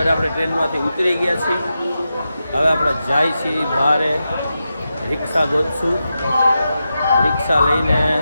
આપણે ટ્રેનમાંથી ઉતરી ગયા છીએ. હવે આપણે જાય છીએ બહારે, રિક્ષા ગોતશું, રિક્ષા લઈને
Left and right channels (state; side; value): inverted; both; correlation -0.89